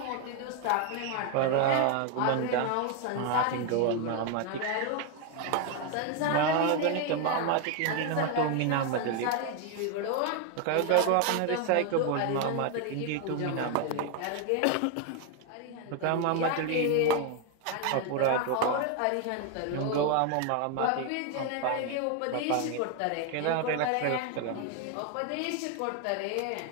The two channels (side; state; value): both; different; correlation 0.01